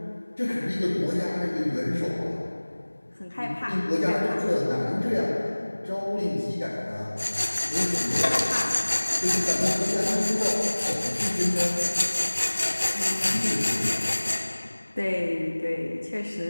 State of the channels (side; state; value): both; inverted; correlation -1.00